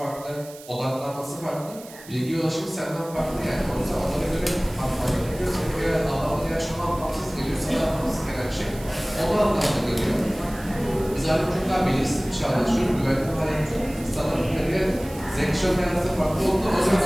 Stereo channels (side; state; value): right; noise; hiss, 18 dB below the sound